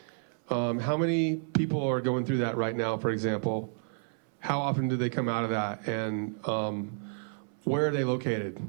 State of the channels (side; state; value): left; silent; 58 dB below the other